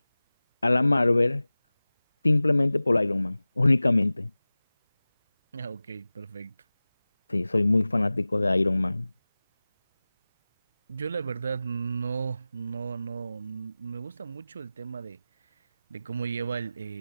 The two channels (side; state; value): both; inverted; correlation -0.97